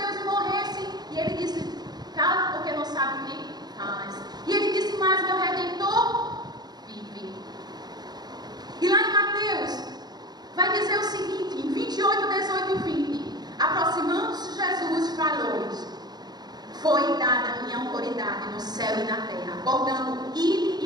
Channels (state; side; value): late; left; 0.20 ms